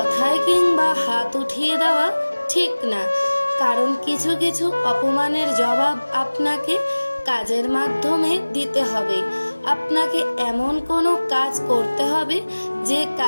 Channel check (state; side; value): inverted; both; correlation -1.00